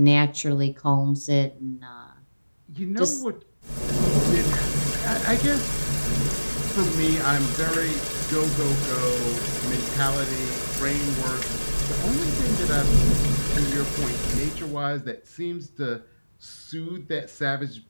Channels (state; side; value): inverted; both; correlation -1.00